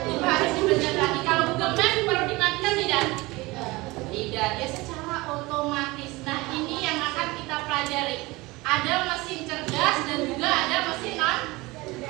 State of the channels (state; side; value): quieter; left; 22.1 dB